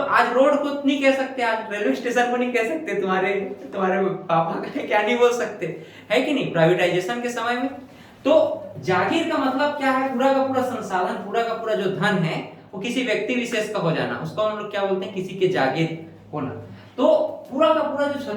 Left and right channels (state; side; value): identical; both; correlation 1.00